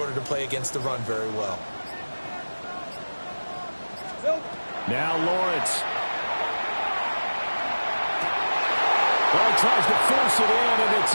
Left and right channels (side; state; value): both; inverted; correlation -1.00